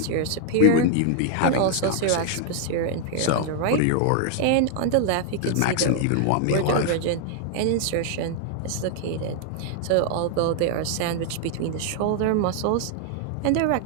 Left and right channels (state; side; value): different; both; correlation 0.00